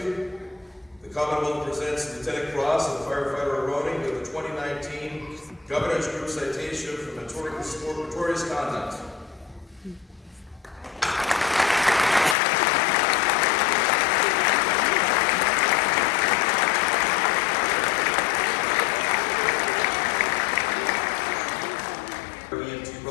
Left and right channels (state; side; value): drops out; right; at 12.4 s